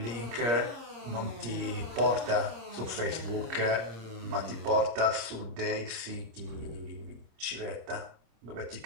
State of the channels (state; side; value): late; left; 26 ms